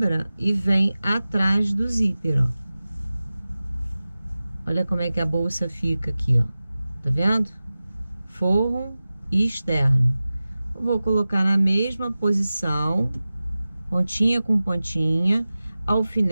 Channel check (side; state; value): both; inverted; correlation -0.96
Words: e vem atrás do zíper, ó. Olha como é que a bolsa fica aqui, ó. Tá vendo? forro e externo. Eu vou colocar na mesma posição, pontinha com pontinha,